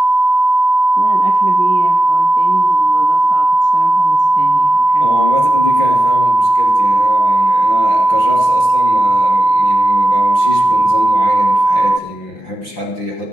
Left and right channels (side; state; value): right; late; 5.8 ms